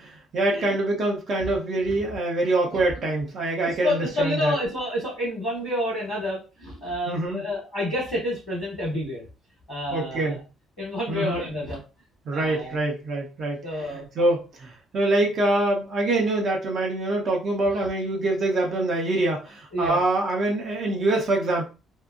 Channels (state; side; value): normal; both; correlation 0.65